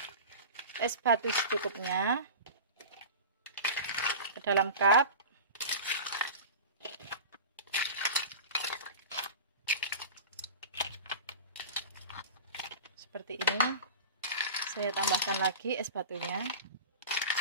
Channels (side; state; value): both; inverted; correlation -0.33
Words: es batu secukupnya ke dalam cup. Seperti ini. Saya tambahkan lagi es batunya.